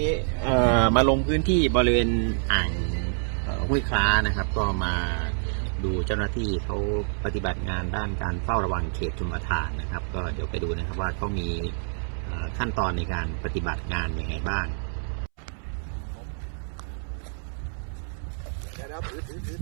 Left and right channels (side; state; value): left; silent; 60 dB below the other